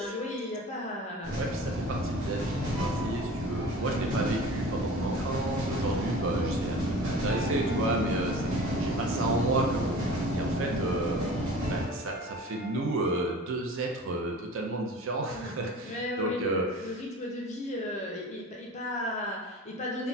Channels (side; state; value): both; normal; correlation 0.40